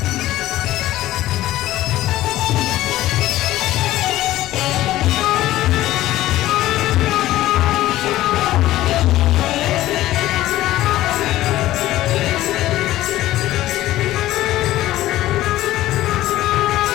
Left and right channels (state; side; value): quieter; right; 15.3 dB